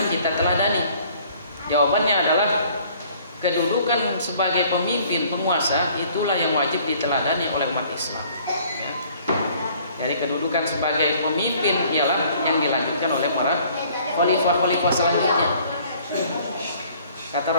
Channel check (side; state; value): both; inverted; correlation -0.57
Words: kita teladani? Jawabannya adalah, kedudukan sebagai pemimpin penguasa itulah yang wajib diteladani oleh umat Islam. Ya. Jadi kedudukan sebagai pemimpin ialah yang dilanjutkan oleh para khalifah-khalifah selanjutnya. Kata